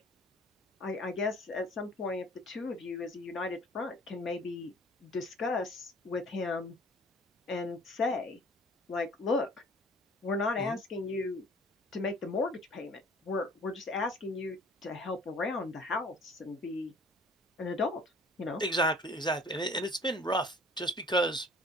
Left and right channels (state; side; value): normal; both; correlation 0.51